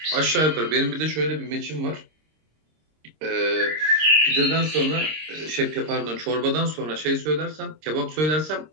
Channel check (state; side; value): late; left; 26 ms